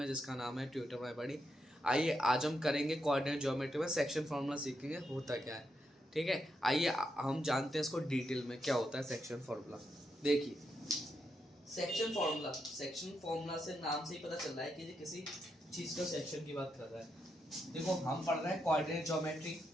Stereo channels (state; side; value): normal; both; correlation 0.83